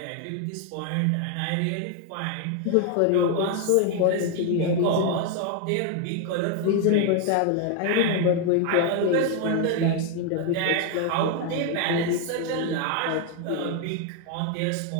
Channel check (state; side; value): different; both; correlation 0.01